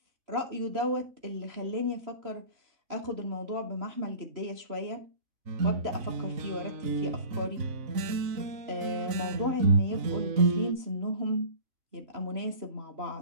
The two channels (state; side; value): late; left; 3.0 ms